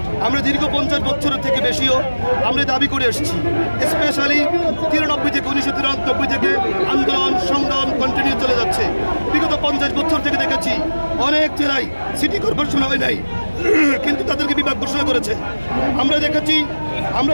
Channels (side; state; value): both; inverted; correlation -1.00